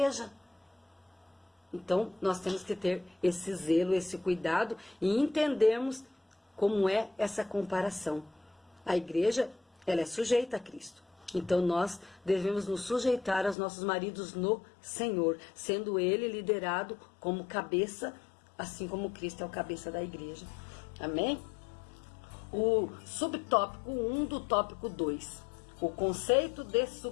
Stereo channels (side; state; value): right; drops out; at 13.6 s